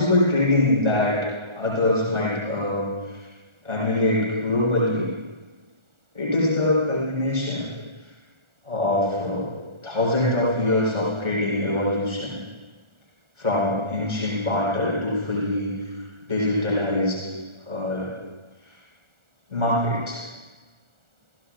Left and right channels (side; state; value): left; late; 1.4 ms